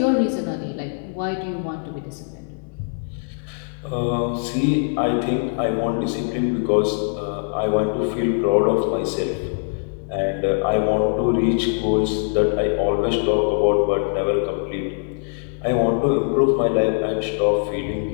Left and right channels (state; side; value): silent; right; 64 dB below the other